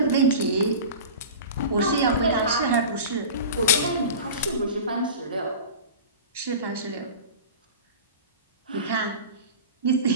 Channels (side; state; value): both; inverted; correlation -0.34